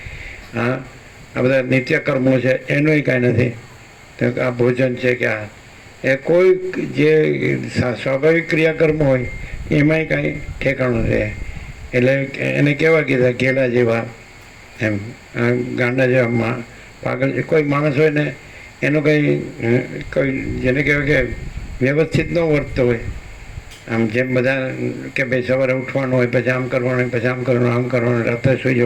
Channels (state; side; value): identical; both; correlation 1.00